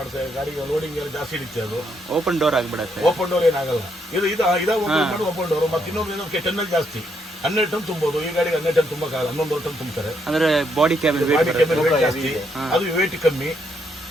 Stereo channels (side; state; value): both; normal; correlation 0.75